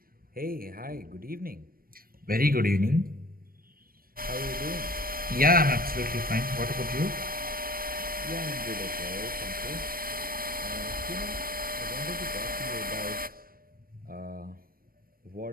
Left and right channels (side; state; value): left; late; 0.42 ms